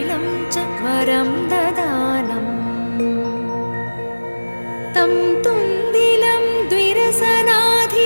च वरं ददानम् तं तुन्दिलं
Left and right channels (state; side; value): inverted; both; correlation -1.00